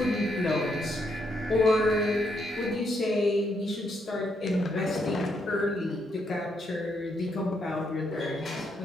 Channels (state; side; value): normal; both; correlation 0.76